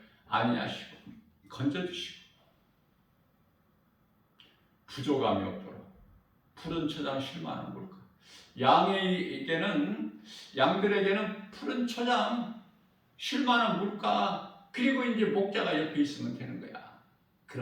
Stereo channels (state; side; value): identical; both; correlation 1.00